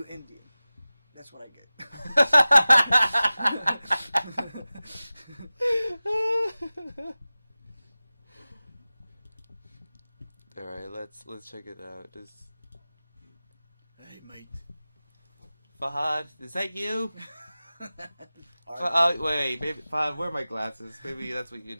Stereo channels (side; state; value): both; inverted; correlation -0.97